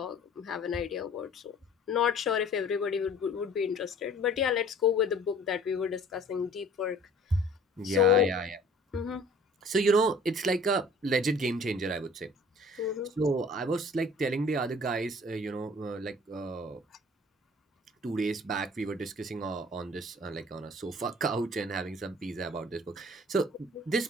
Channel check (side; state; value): both; normal; correlation 0.51